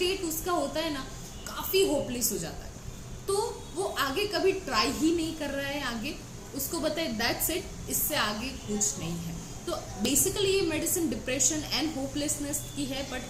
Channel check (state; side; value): identical; both; correlation 1.00